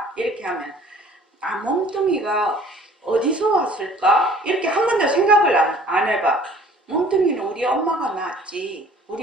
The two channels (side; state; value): both; normal; correlation 0.52